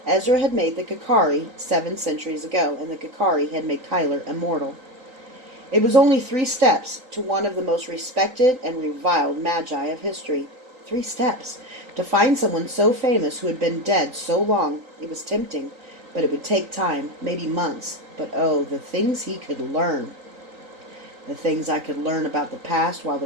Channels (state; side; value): late; left; 3.9 ms